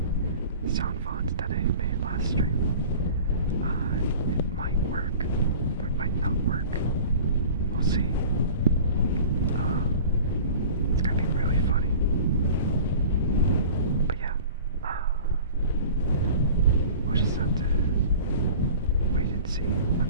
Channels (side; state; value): both; inverted; correlation -0.41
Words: sound font that I made last stream, it might work, or it might not work. We'll see. It's gonna be really funny. But yeah, we'll just have to wait and see